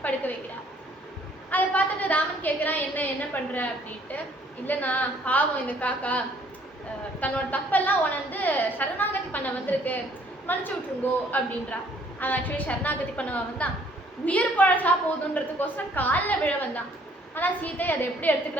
படுக்க வைக்கிறார். அதை பார்த்துட்டு ராமன் கேட்குறான், என்ன பண்ணுற அப்படின்ட்டு. இல்லைண்ணா, பாவம் இந்த காக்கா தன்னோட தப்பெல்லாம் உணர்ந்து சரணாகதி பண்ண வந்திருக்கு, மன்னிச்சு விட்டுருங்கோ அப்படின்றா. அவன் ஆக்சுவலி சரணாகதி பண்ணவா வந்தான், உயிர் பழசா போதுன்றதுக்கோசரம் காலில் விழ வந்தான். ஆனால் சீதை அதை எப்படி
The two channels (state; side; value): normal; both; correlation 0.61